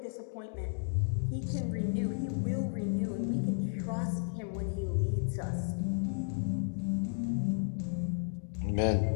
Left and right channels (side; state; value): right; silent; digital silence